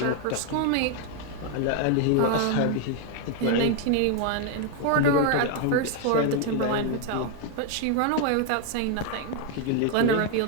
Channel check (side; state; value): both; different; correlation 0.00